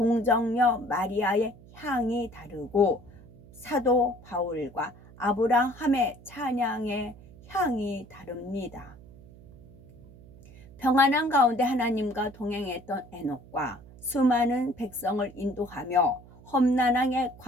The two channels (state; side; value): noise; right; hum, 21 dB below the sound